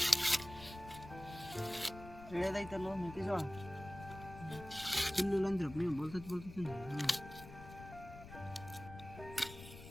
ತಿಳಿಯೋದೈತಲ್ಲ ಮೆಕ್ಕೆಜೋಳ. ಚಿಲ್ಲಿಲ್ಲ ಅಂದ್ರಪ್ಪ ನೀವು, ಬೋಲ್ತೈತಿ.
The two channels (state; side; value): noise; left; rumble, 14 dB below the sound